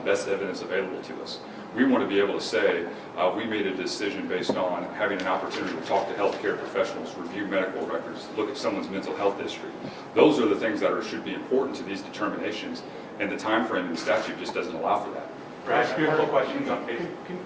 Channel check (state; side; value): identical; both; correlation 1.00